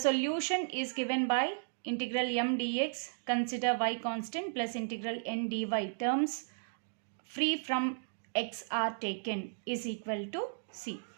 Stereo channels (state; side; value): silent; left; digital silence